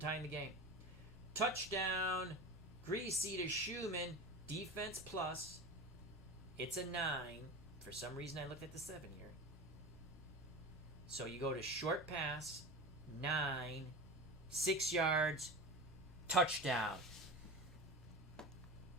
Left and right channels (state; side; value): normal; both; correlation 0.30